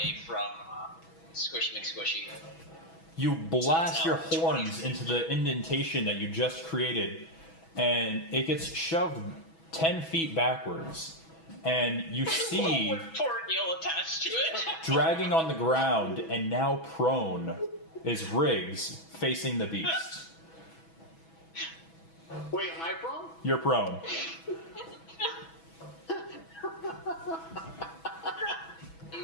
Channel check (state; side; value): late; right; 6.1 ms